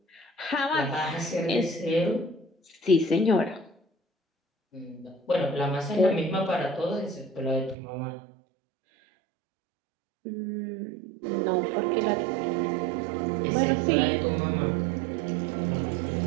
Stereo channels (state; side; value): drops out; left; at 7.8 s